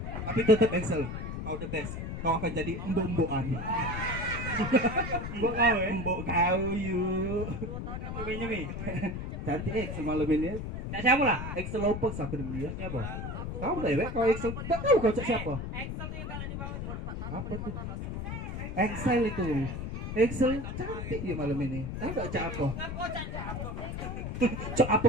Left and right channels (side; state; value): left; noise; rumble, 5 dB below the sound